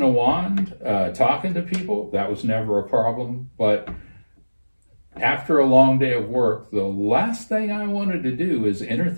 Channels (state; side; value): inverted; both; correlation -1.00